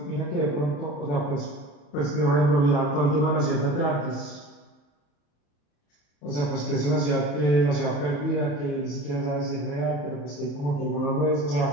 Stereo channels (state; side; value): late; right; 35 ms